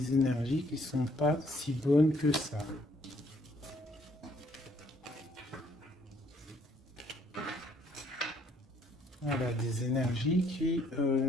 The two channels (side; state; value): both; normal; correlation 0.66